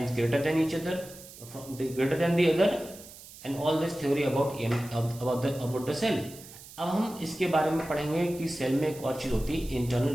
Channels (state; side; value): noise; right; hiss, 17 dB below the sound